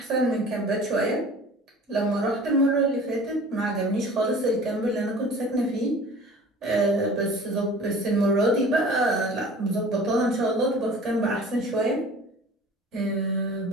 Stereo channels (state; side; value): normal; both; correlation 0.44